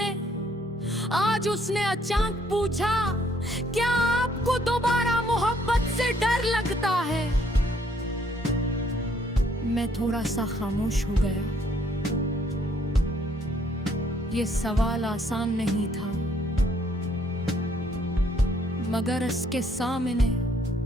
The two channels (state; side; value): normal; both; correlation 0.67